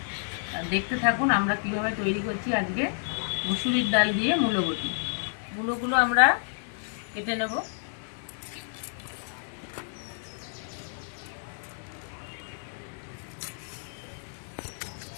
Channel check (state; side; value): silent; right; 58 dB below the other